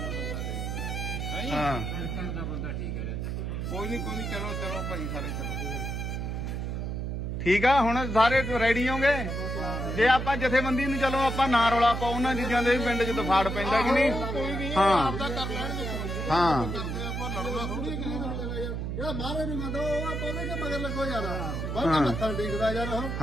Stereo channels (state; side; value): noise; right; hum, 3 dB below the sound